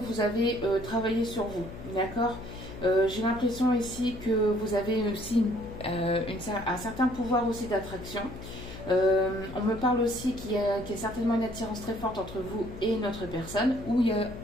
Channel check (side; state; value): left; noise; hum, 12 dB below the sound